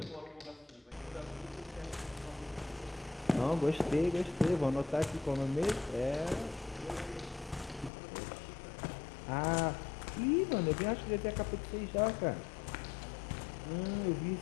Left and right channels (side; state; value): right; drops out; at 7.9 s